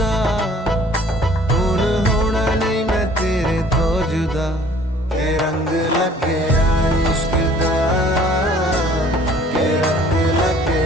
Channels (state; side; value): normal; both; correlation 0.54